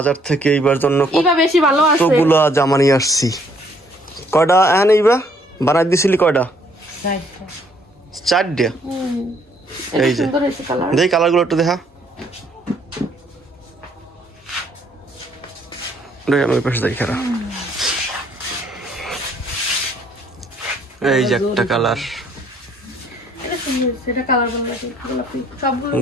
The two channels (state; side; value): normal; both; correlation 0.65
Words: থেকে এইবার জন্য ইবা বেশি ভালো আছে। কতগুলো জামা নিয়ে আসছি। কয়টা হ্যাঁ এইবা বানাই দিছিলি? কয়টা? 4টা। এই যে দেখ কালারগুলো একটু দেখা। আমি ওই পাশে দেখি খারাপ। এই যে একটা কালার,